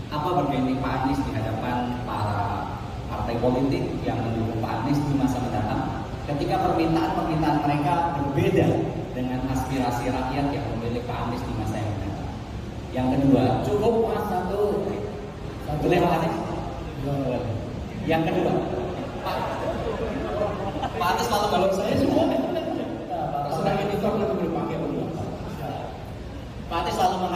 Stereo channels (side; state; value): both; identical; correlation 1.00